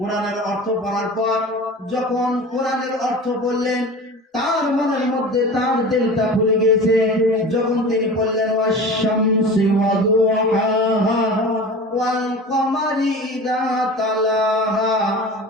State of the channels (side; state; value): both; normal; correlation 0.35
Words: অর্থ পড়ার পর যখন কোরআনের অর্থ বললেন, তার মনের মধ্যে তার দিলটা খুলে গেছে। যখন তিনি বললেন ওয়াশ-শামসি ওয়া-দুহাহা ওয়াল কমারি ইযা তালাহা